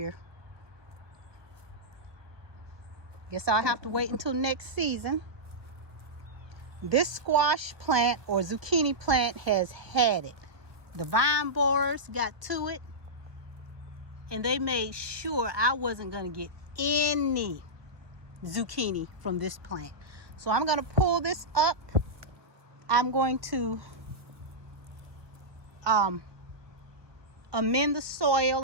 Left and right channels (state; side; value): late; left; 1.4 ms